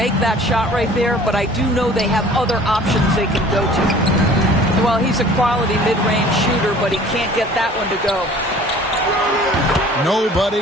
that shot right there, but I do know they have other options they can go to. Well, he's a quality mid-range shooter, but he can't get that one to go. Nobody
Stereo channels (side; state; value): both; normal; correlation 0.49